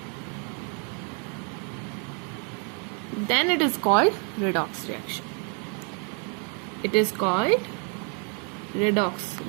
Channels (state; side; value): quieter; left; 38.8 dB